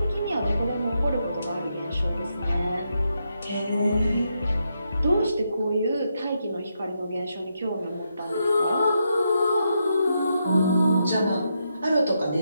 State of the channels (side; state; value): both; inverted; correlation -0.82